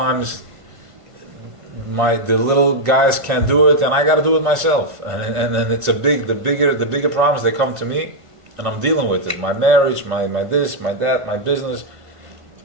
the little guys can't do it, and I got to do it myself. And it's the bigger problems, they come to me, and I'm dealing with it. My marriage, my this, my that, my business.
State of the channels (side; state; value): left; late; 1.5 ms